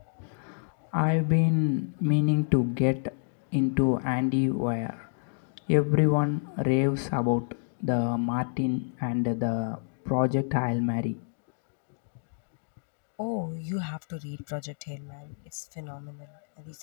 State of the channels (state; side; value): silent; right; digital silence